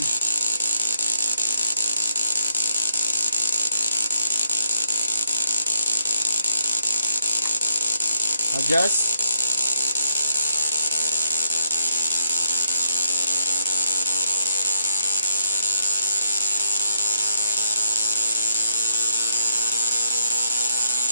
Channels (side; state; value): both; inverted; correlation -0.74